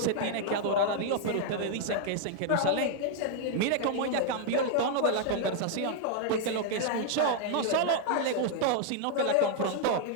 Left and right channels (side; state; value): both; different; correlation 0.00